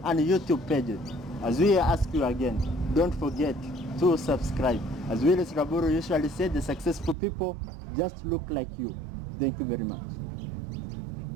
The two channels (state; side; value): drops out; left; at 7.2 s